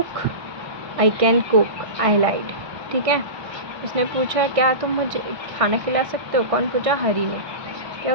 I can cook, I lied, ठीक है। उसने पूछा क्या तुम मुझे खाना खिला सकते हो, कौन पूछा, हरी ने। क्या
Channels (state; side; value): late; left; 1.5 ms